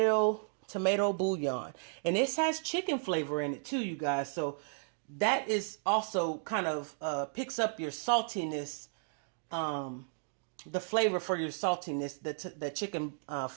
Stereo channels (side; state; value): left; silent; digital silence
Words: bouillon. And this has chicken flavor in it too, you guys. So that is also kind of picks up your saltiness, the flavor for your saltiness, the chicken